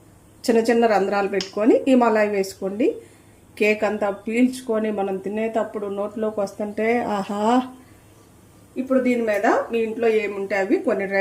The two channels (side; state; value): both; identical; correlation 1.00